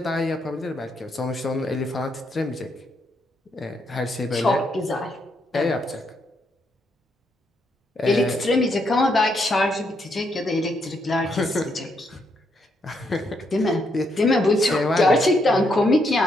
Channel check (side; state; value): both; normal; correlation 0.77